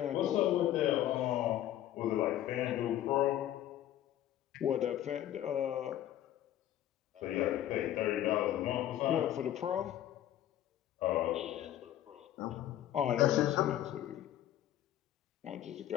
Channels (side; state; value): right; quieter; 12.4 dB